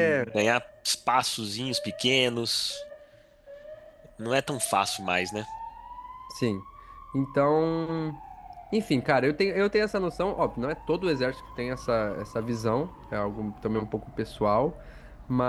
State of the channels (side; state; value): both; identical; correlation 1.00